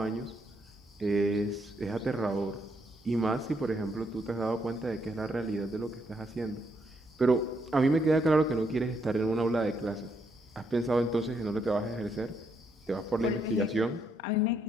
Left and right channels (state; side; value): normal; both; correlation 0.76